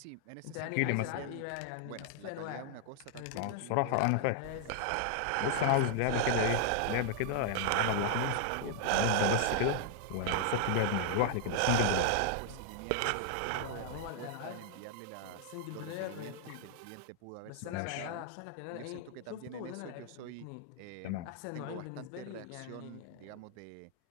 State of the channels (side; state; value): both; different; correlation -0.01